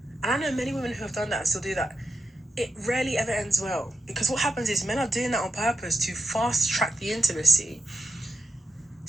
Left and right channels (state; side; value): normal; both; correlation 0.87